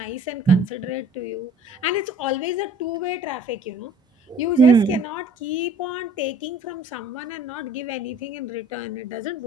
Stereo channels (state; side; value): normal; both; correlation 0.53